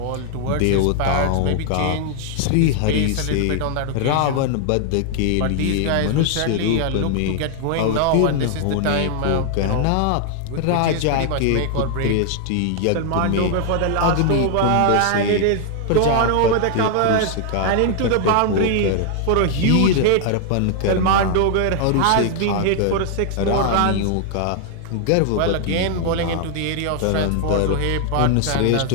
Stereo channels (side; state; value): both; different; correlation 0.00